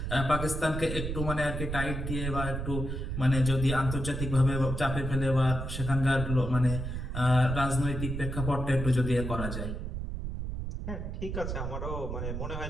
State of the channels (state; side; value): noise; right; rumble, 4 dB below the sound